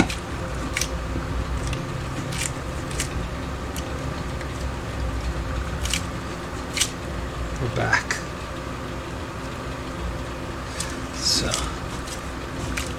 We're back. So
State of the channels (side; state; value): both; identical; correlation 1.00